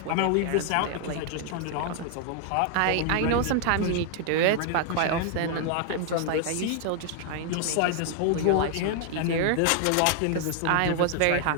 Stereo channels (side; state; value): both; different; correlation 0.00